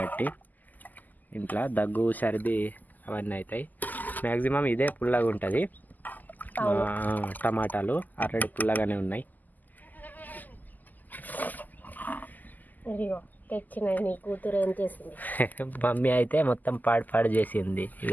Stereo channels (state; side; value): late; right; 0.083 ms